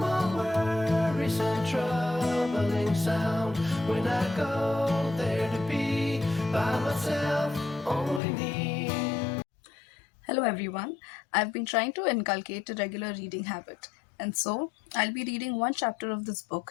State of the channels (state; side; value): drops out; right; at 8.2 s